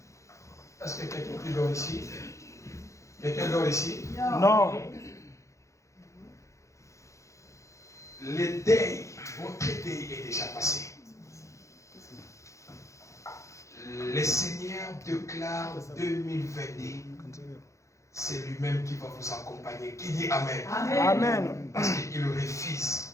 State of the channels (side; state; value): right; late; 0.15 ms